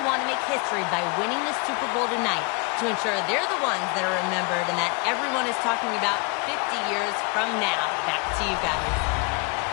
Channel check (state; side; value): quieter; right; 32.1 dB